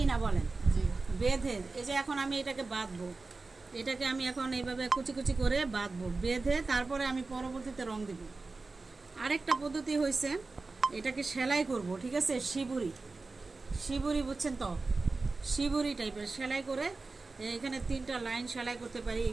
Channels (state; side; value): quieter; left; 3.7 dB